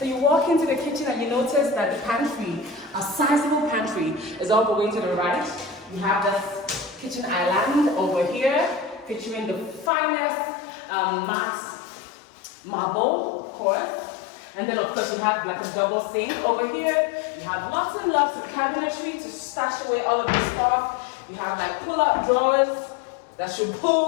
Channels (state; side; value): drops out; right; at 9.9 s